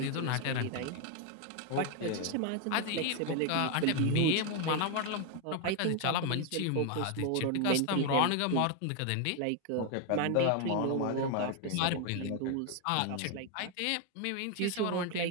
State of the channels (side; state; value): both; different; correlation 0.01